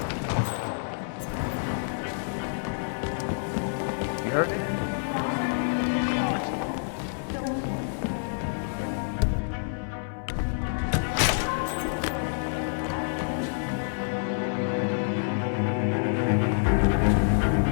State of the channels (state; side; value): silent; right; digital silence